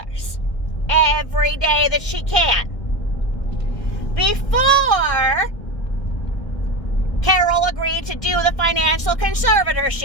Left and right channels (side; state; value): right; late; 1.6 ms